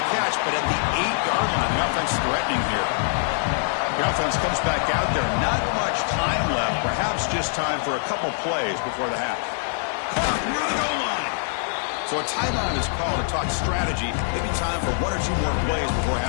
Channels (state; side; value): silent; right; digital silence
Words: catch, but at the 8-yard line. The offense threatening here. The offense comes back out there. Not much time left. Perhaps just time for a couple plays before the half. Caught near the goal line. So a timeout is called to talk strategy. Maybe time for one or two more plays before